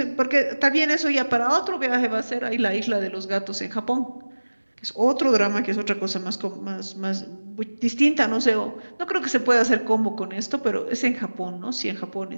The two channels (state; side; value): inverted; both; correlation -1.00